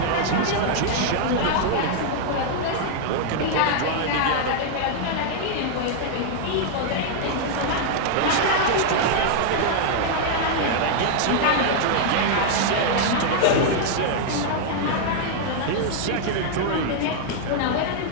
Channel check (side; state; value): both; different; correlation -0.01